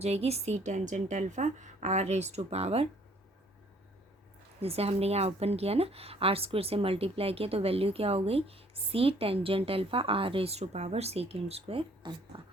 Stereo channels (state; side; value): normal; both; correlation 0.60